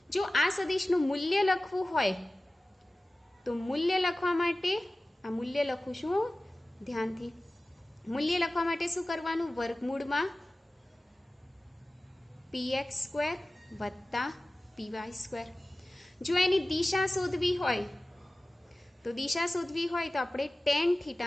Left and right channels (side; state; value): both; normal; correlation 0.97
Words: જો આ સદિશનું મૂલ્ય લખવું હોય તો મૂલ્ય લખવા માટે આ મૂલ્ય લખું છું ધ્યાનથી. મૂલ્ય લખવા માટે શું કરવાનું? વર્ગમૂળમાં PX સ્ક્વેર વત્તા PY સ્ક્વેર. જો એની દિશા શોધવી હોય તો આપણે ટેન